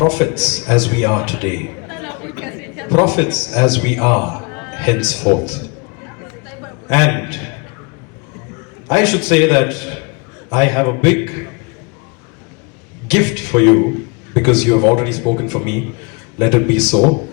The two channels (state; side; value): quieter; right; 30.8 dB